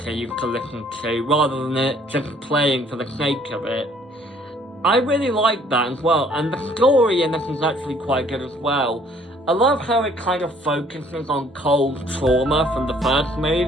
used to listen to, rather than it just playing for the sake of it. I really like that as well, and the story in this is actually quite good as well. I love how it kind of focuses on Cole's trauma from the first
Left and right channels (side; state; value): both; normal; correlation 0.60